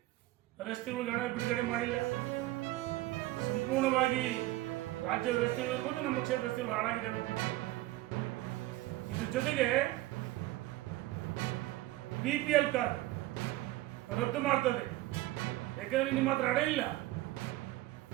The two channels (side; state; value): left; quieter; 17.3 dB